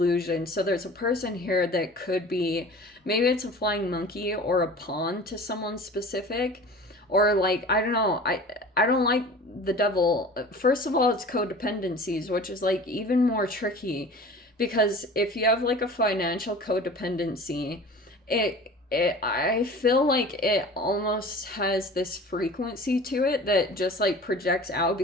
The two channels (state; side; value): normal; both; correlation 0.41